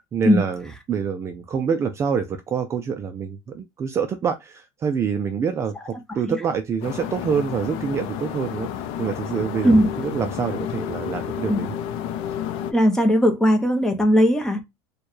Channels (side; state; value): both; normal; correlation 0.73